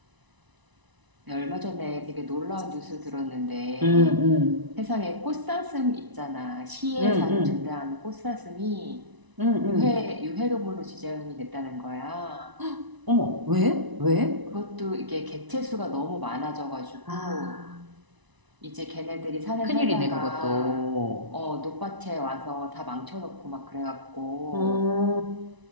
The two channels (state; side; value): late; left; 1.0 ms